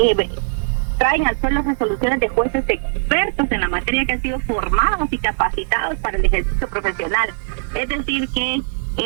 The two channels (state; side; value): silent; left; digital silence